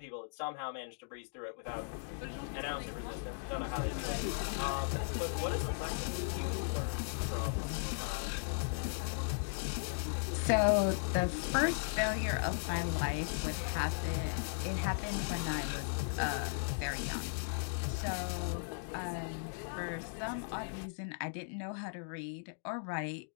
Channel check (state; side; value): silent; right; digital silence